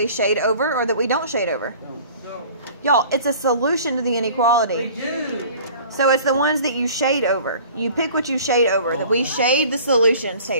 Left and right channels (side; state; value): both; inverted; correlation -0.47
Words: shade over or that we don't shade over? No. Y'all, it's a solution to the We inequality. do. So it's the ones that you shade over. You pick what you shade over. That we shade the solutions,